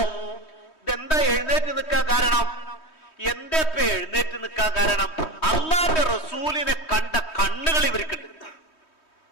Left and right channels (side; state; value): right; late; 3.2 ms